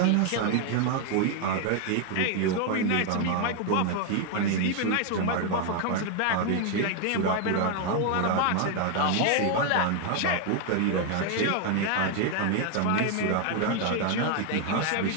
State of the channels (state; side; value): different; both; correlation 0.01